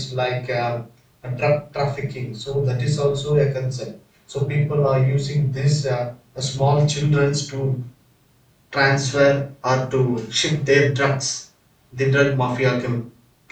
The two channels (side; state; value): both; identical; correlation 1.00